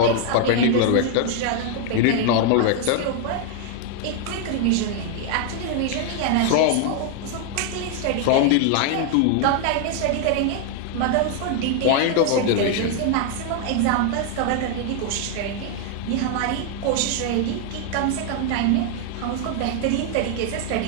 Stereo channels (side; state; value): both; different; correlation 0.00